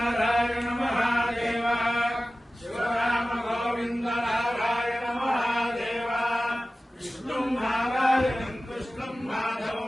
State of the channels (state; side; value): normal; both; correlation 0.96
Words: మహాదేవ, శివరామ గోవింద నారాయణ మహాదేవ. విష్ణుం నారాయణం కృష్ణం